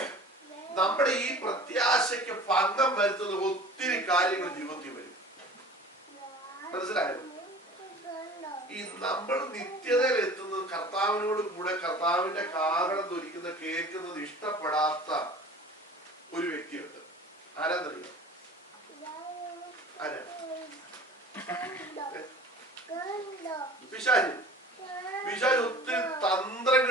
നമ്മുടെ ഈ പ്രത്യാശയ്ക്ക് ഭംഗം വരുത്തുന്ന ഒത്തിരി കാര്യങ്ങൾ ജീവിതത്തിൽ വരും. മനസ്സിലായോ? ഈ നമ്മൾ നിത്യതയിൽ എത്തുന്നത് കർത്താവിനോട് കൂടെ കർത്താവിന്റെ കാരണം ധരിക്കുന്ന കേൾക്കുന്നത് ഇഷ്ടപ്പെടാത്ത ഒരു വ്യക്തിയുണ്ട്. ആരാന്നറിയോ? ആരാ? പിശാച്. പിശാച് ഒത്തിരി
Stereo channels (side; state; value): both; normal; correlation 0.43